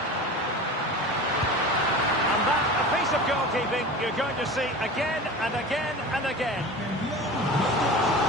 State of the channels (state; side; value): normal; both; correlation 0.34